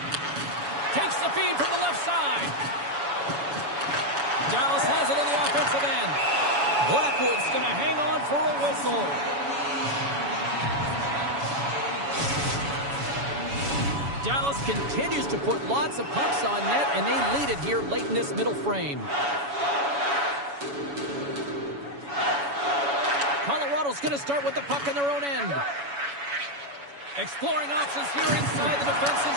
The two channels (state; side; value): late; left; 7.1 ms